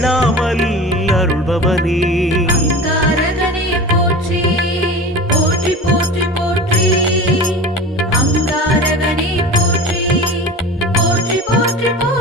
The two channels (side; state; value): both; normal; correlation 0.34